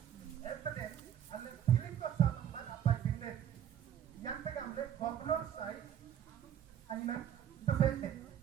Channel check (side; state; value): left; quieter; 9.8 dB